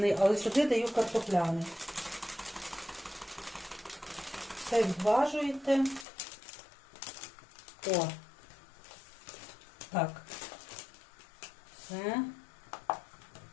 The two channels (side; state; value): right; drops out; at 6.1 s